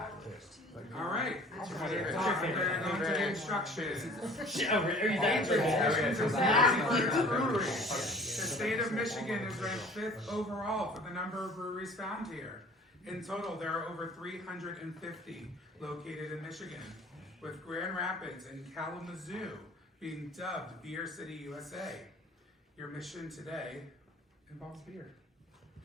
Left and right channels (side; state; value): both; normal; correlation 0.48